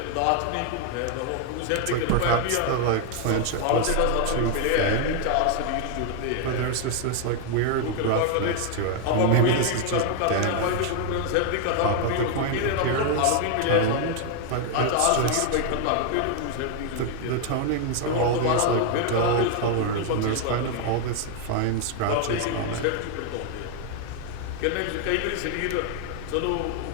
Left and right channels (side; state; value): both; different; correlation 0.00